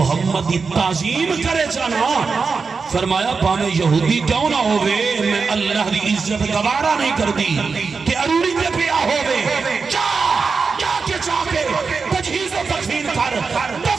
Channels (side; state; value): left; quieter; 4.9 dB